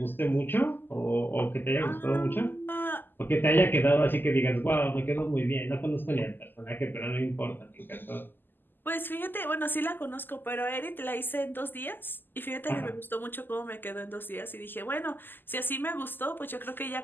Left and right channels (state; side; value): late; right; 0.092 ms